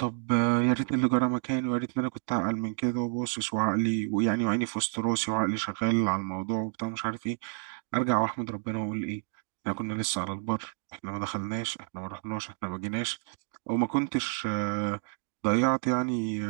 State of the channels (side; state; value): left; silent; 58 dB below the other